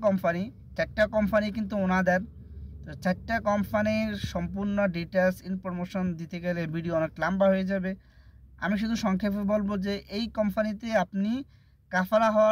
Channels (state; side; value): identical; both; correlation 1.00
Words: কোম্পানি কিন্তু ওনাদের, তো চারটা কোম্পানির সম্পূর্ণ ডিটেলস ইনফরমেশন দিতে গেলে ভিডিও অনেক লম্বা হয়ে যাবে। আমি শুধু সংক্ষেপে বলবো যে এই কোম্পানিতে আপনি কাফালা